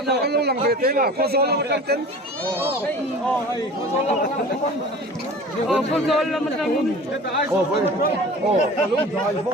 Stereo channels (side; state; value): both; normal; correlation 0.40